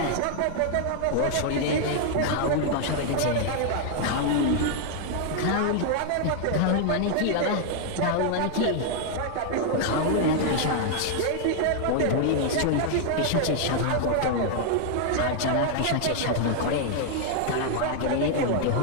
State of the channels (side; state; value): both; different; correlation 0.00